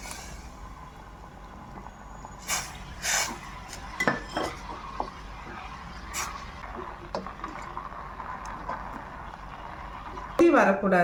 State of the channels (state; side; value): identical; both; correlation 1.00